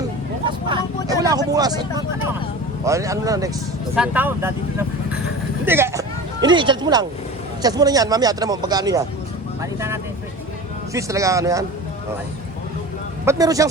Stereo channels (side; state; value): both; normal; correlation 0.35